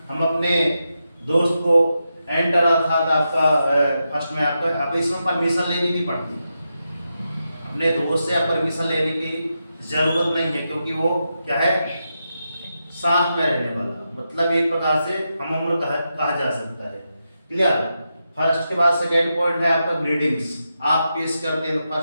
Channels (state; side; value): inverted; both; correlation -0.87